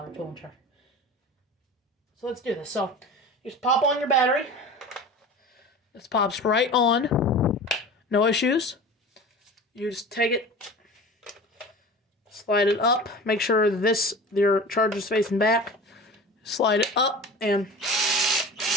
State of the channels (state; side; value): normal; both; correlation 0.36